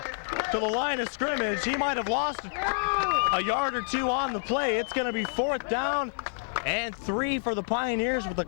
line of scrimmage. He might have lost a yard or 2 on the play. It's going to be 4th down and 3 for the Pioneers with the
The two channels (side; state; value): right; silent; 59 dB below the other